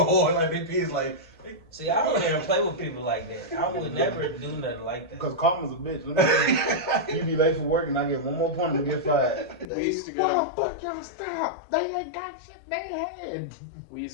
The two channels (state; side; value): drops out; right; at 9.7 s